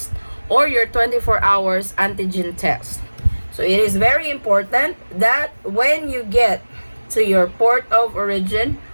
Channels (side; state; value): both; inverted; correlation -1.00